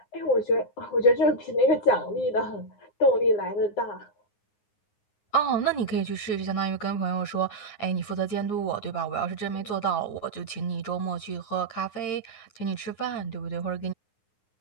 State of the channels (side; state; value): right; late; 9.6 ms